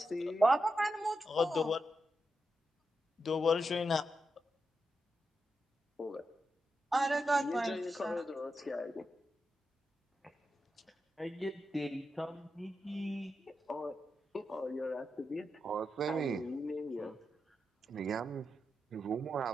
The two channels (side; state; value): both; normal; correlation 0.87